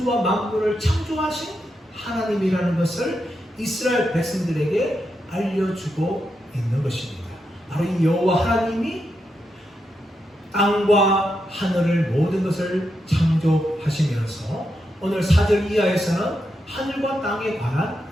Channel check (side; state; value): both; normal; correlation 0.85